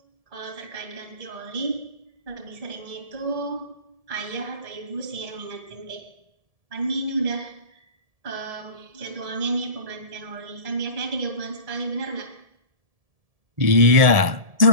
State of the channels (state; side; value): late; left; 1.7 ms